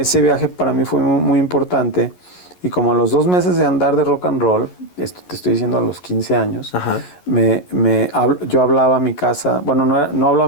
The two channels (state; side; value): late; right; 11 ms